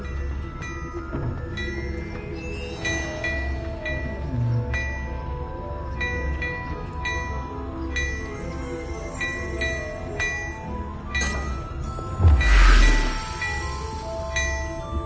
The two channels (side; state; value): both; identical; correlation 1.00